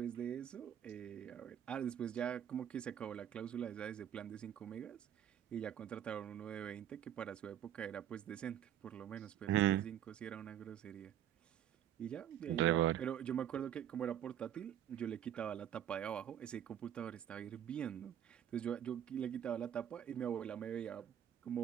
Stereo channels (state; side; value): quieter; left; 10.2 dB